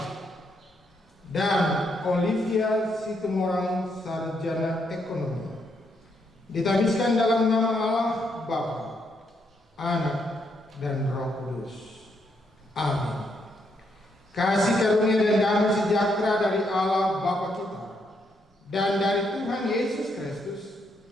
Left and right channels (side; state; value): both; normal; correlation 0.77